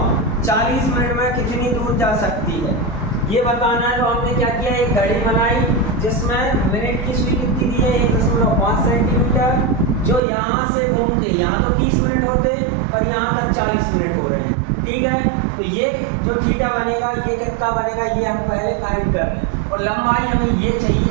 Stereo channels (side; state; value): left; drops out; at 10.2 s